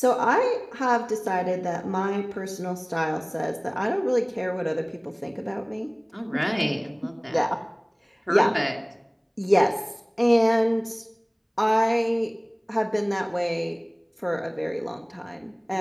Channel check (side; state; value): both; identical; correlation 1.00